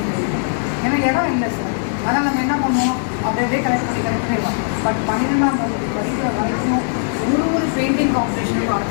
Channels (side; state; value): right; silent; digital silence